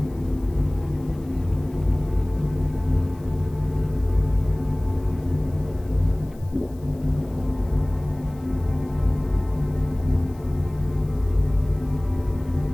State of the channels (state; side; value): noise; left; hiss, 28 dB below the sound